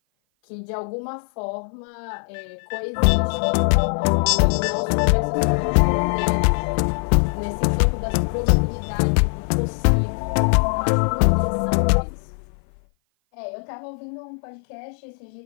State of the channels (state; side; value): silent; right; 56 dB below the other